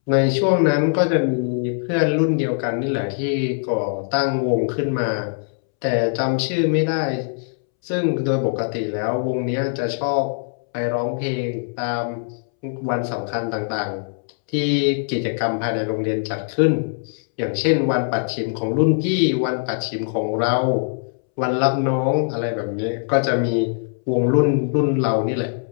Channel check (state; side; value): silent; right; 64 dB below the other